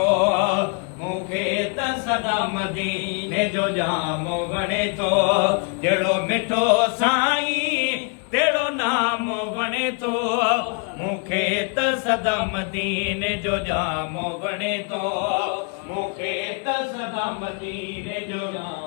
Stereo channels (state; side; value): quieter; right; 34.8 dB